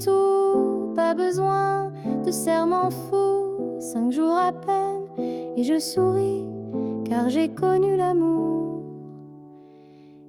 pas besoin de serment fou. 5 jours à peine, et je souris, car j'ai connu l'amour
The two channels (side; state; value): both; identical; correlation 1.00